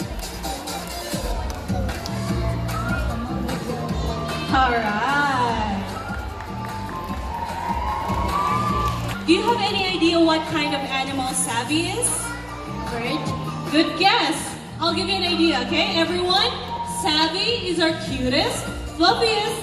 Alright. Do you have any idea what kind of animal Savvy is? Great. Good guess. I'll give you an idea, okay, everyone? Savvy is our cutest, fluffiest,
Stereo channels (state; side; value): identical; both; correlation 1.00